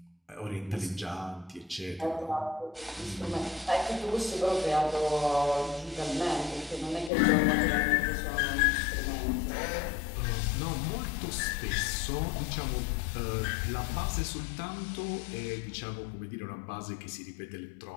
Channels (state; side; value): drops out; right; at 7.1 s